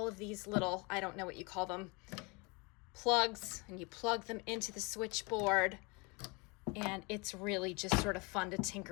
of these little, I don't know what you call them, plugs, and you plug them into the switchboard. And it's really just sort of fun to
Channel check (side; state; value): right; quieter; 28.6 dB